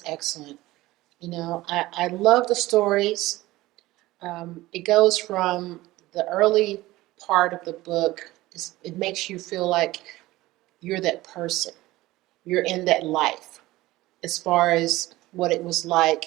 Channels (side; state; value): left; quieter; 18.0 dB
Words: excellent. You know, I love the stories. It goes from the early part of the book, it makes you feel like you're that person, you're in that life, as far as what it was